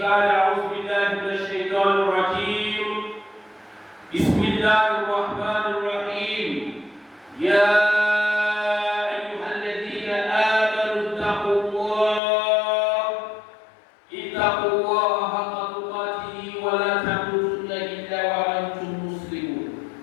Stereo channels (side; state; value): right; drops out; at 12.2 s